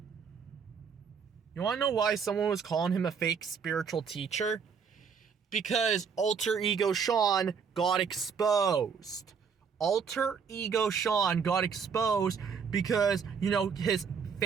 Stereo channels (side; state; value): left; quieter; 6.3 dB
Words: You want to know why someone was calling him a fake spiritual teacher? Because Alter Ego Sean got exposed. Alter Ego Sean got exposed because, you know, his